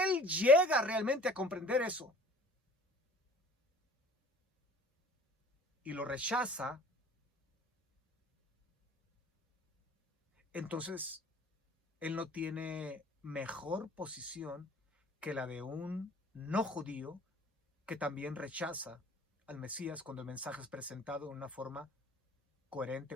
llega realmente a comprender eso y lo rechaza, entonces él no tiene mejor posición que la de un no judío que también rechaza al Mesías cuando el mensaje es presentado de una forma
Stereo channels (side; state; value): both; normal; correlation 0.48